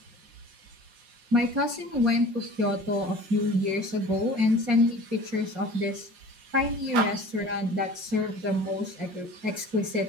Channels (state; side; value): late; left; 5.6 ms